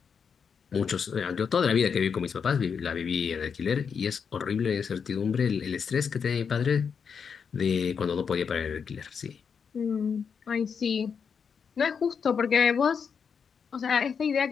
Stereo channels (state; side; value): quieter; right; 6.4 dB